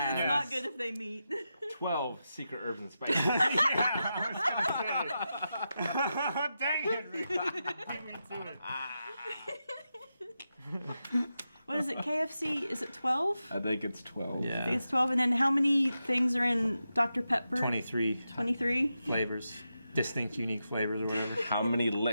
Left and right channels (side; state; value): both; inverted; correlation -0.89